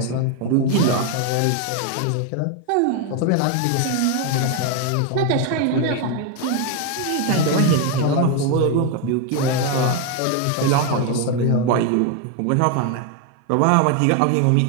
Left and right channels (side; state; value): both; different; correlation 0.01